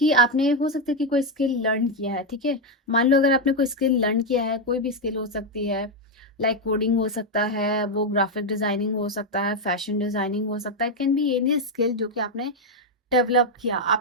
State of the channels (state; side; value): normal; both; correlation 0.03